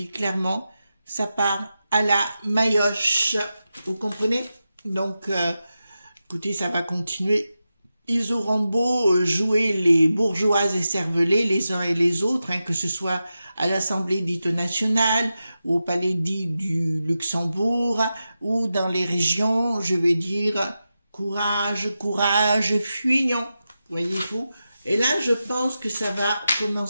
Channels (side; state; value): both; inverted; correlation -0.91